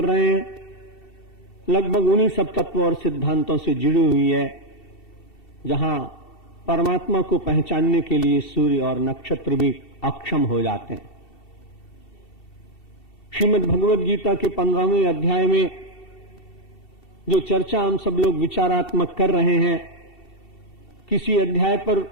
रहे हैं लगभग उन्हीं सब तत्वों और सिद्धांतों से जुड़ी हुई है जहां परमात्मा को पहचानने के लिए सूर्य और नक्षत्र भी अक्षम हो जाते हैं। श्रीमद् भगवद गीता के 15वें अध्याय में जो चर्चा हम सब लोग विचारात्मक कर रहे हैं, किसी अध्याय पर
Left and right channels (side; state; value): right; late; 2.7 ms